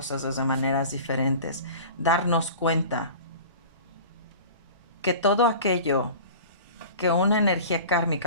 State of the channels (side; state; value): both; inverted; correlation -0.38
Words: desde maneras diferentes, darnos cuenta que todo aquello que una energía